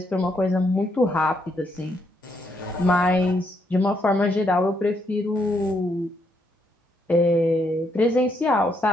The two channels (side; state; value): both; normal; correlation 0.75